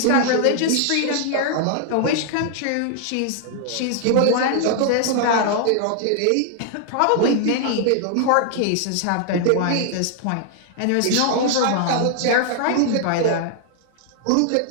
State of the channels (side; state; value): both; different; correlation 0.00